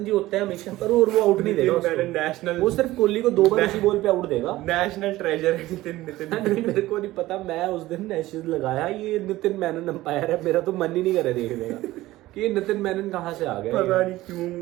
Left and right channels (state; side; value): quieter; left; 17.0 dB